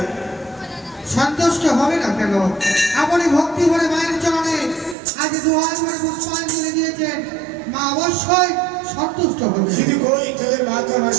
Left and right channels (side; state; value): left; drops out; at 5.0 s